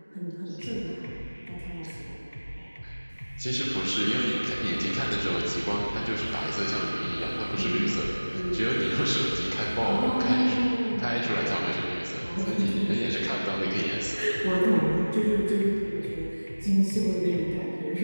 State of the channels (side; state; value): both; inverted; correlation -1.00